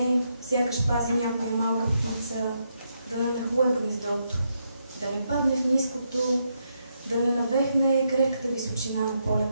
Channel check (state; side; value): inverted; both; correlation -0.80